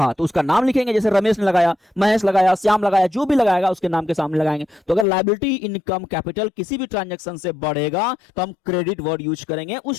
तो उसका नाम लिखेंगे। जैसे रमेश ने लगाया, महेश लगाया, श्याम लगाया, जो भी लगाएगा उसके नाम के सामने लगाएंगे। तो अगर लायबिलिटी, इनकम, कैपिटल किसी भी ट्रांजैक्शन से बढ़ेगा तो हम क्रेडिट वर्ड यूज करेंगे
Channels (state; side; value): drops out; right; at 5.1 s